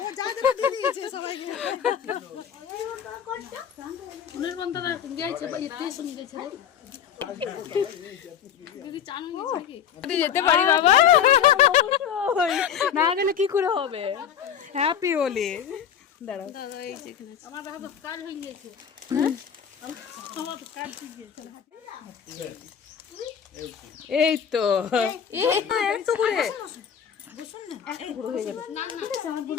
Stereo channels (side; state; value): right; quieter; 8.4 dB